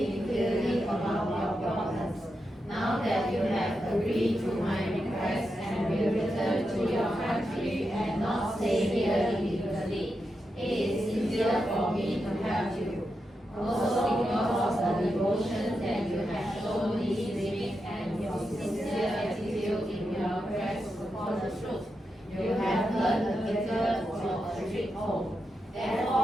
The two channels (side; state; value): both; normal; correlation 0.87